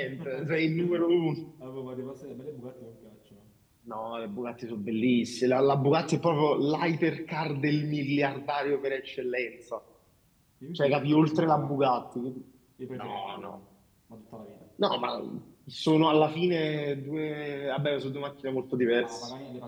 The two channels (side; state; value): both; identical; correlation 1.00